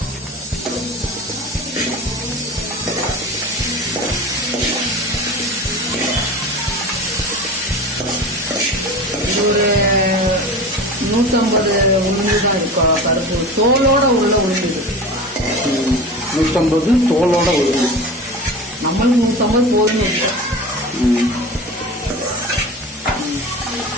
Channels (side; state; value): both; normal; correlation 0.32